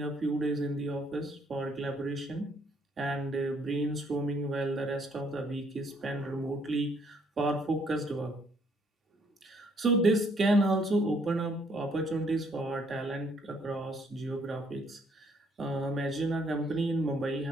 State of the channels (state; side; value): normal; both; correlation 0.66